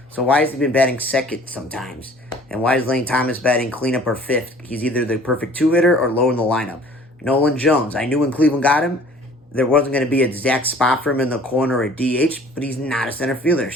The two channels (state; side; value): normal; both; correlation 0.51